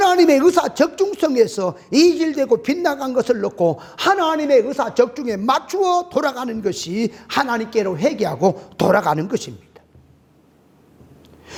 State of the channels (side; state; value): both; identical; correlation 1.00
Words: 의사 적중성에서 이질되고 빗나간 것을 놓고 하나님의 의사 적중에 맞추어 돌아가는 것이 하나님께로 회개하고 돌아가는 것입니다.